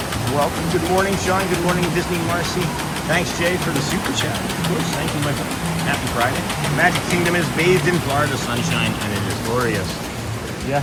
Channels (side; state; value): both; identical; correlation 1.00